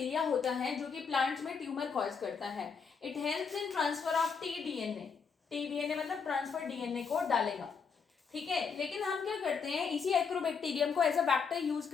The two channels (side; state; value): right; quieter; 5.8 dB